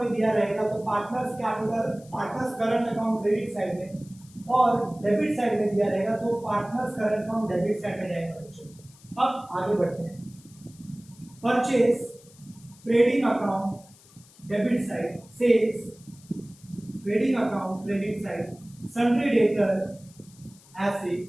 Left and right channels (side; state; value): left; noise; hiss, 25 dB below the sound